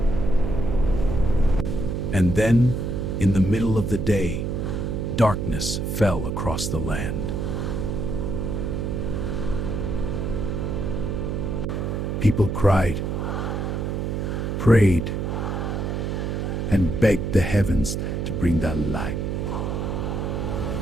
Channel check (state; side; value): noise; right; hum, 2 dB below the sound